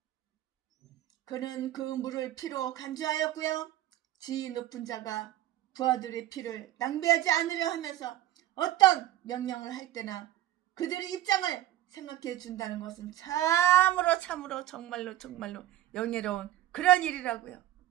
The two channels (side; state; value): left; quieter; 13.9 dB